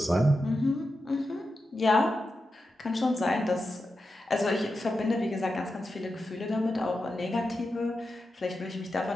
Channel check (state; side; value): normal; both; correlation 0.90